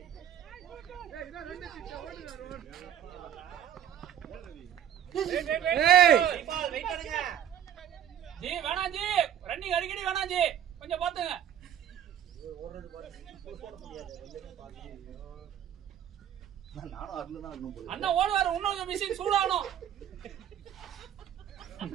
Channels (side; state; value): left; quieter; 10.0 dB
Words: ஜி வேணாம் ஜி, ரன்னிங் அடிக்கடி வேணாம் ஜி, கொஞ்சம் பாத்துங்க. நானும் அதுல தான் இருக்கணும் போல. அண்ணா ஓடுவாரு, இன்னொரு மிஷின் சூடாகணும்.